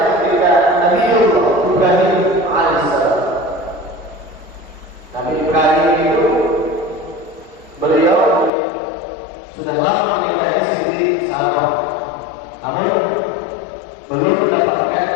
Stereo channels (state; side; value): drops out; right; at 8.5 s